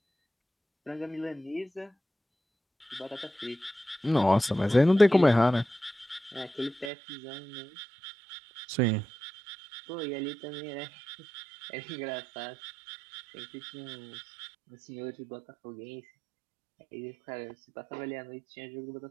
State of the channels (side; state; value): left; drops out; at 6.9 s